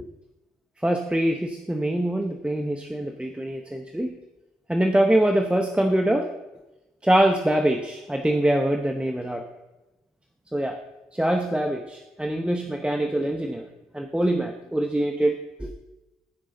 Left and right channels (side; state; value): both; normal; correlation 0.93